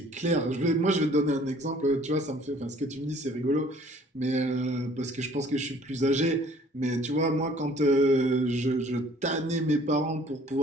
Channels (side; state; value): both; normal; correlation 0.55